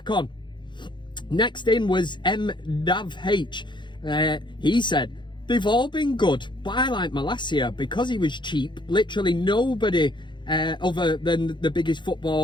on. Next in was MUFC H. He said, they've all been good, but I like Malacia because he was cheap. Literally nobody other than the biggest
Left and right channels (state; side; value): late; right; 0.23 ms